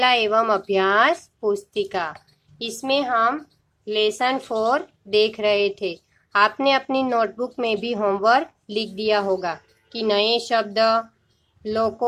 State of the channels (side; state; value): both; identical; correlation 1.00